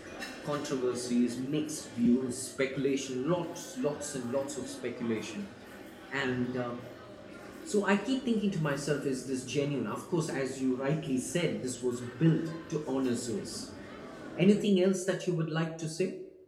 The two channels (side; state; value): both; identical; correlation 1.00